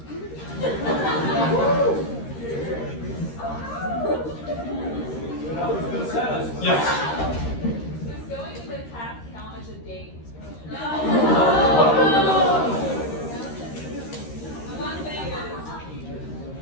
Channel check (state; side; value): late; right; 13 ms